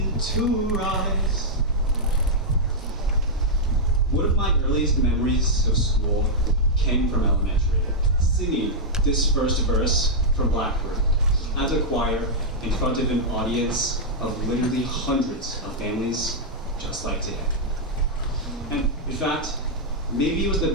to rise. One of my earliest memories of school came from elementary, singing this first verse from Blackbird as a choir in front of an audience of literally hundreds of families just like today. And in fact, maybe it was the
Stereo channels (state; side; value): normal; both; correlation -0.06